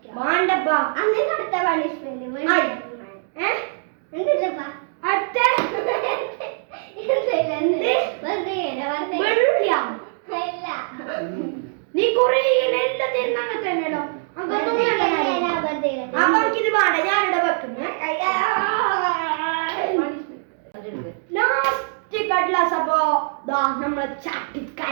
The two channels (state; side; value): silent; left; digital silence